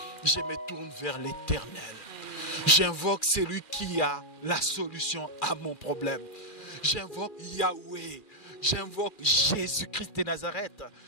Je me tourne vers l'Éternel. J'invoque celui qui a la solution à mon problème. J'invoque Yahweh. J'invoque Jésus-Christ de Nazareth.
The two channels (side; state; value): right; late; 2.4 ms